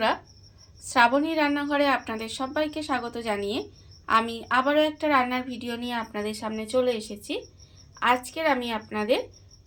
শ্রাবণী রান্নাঘরে আপনাদের সবাইকে স্বাগত জানিয়ে আমি আবারও একটা রান্নার ভিডিও নিয়ে আপনাদের সামনে চলে এসেছি। আজকের আমি আপনাদের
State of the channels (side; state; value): both; identical; correlation 1.00